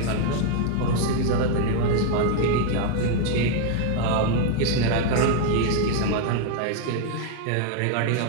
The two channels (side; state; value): both; different; correlation 0.00